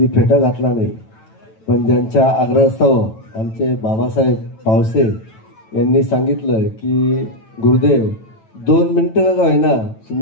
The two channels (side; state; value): right; late; 9.1 ms